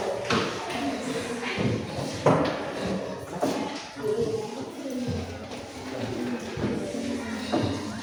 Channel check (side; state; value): both; identical; correlation 1.00